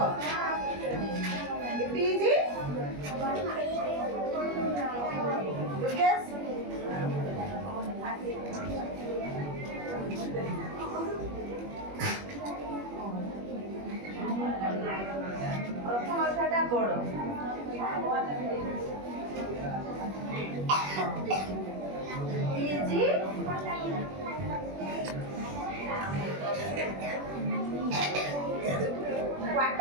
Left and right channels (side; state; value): left; late; 21 ms